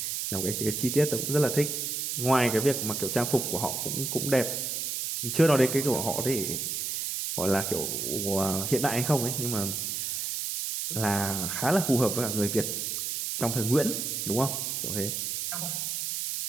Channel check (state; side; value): noise; right; hiss, 2 dB below the sound